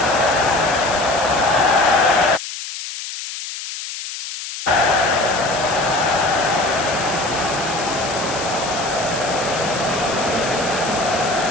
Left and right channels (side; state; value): left; noise; hiss, 8 dB below the sound